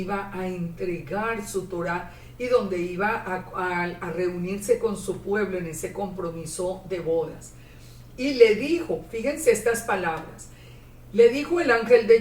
a entregar su Torah y donde iba a reunirse con su pueblo en ese compromiso de bodas. Y le dijo, fíjense estas palabras, Le dijo el ángel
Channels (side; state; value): both; identical; correlation 1.00